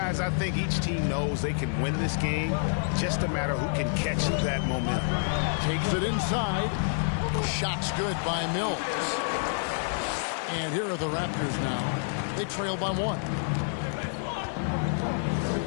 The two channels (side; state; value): right; silent; 59 dB below the other